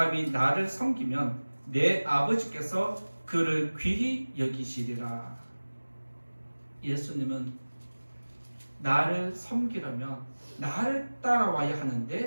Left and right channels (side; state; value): both; inverted; correlation -1.00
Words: 나를 섬기면 내 아버지께서 그를 귀히 여기시리라. 예수님은 나를 섬기려면 나를 따라와야